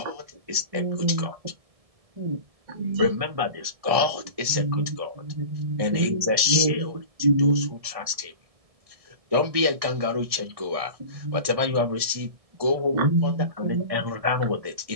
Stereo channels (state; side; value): late; left; 1.7 ms